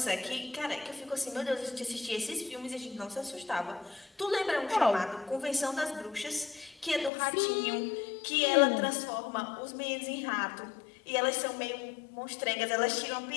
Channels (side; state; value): right; drops out; at 7.1 s